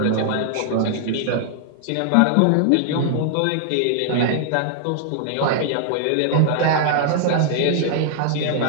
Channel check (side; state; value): both; different; correlation -0.01